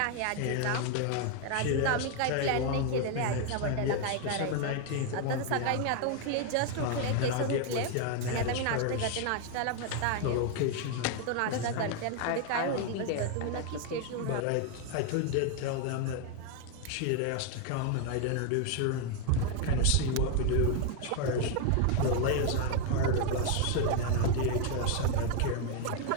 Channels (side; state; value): both; different; correlation 0.01